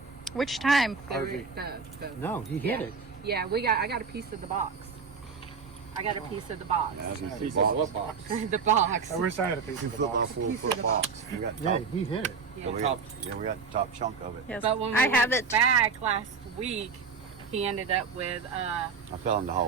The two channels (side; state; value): left; quieter; 5.3 dB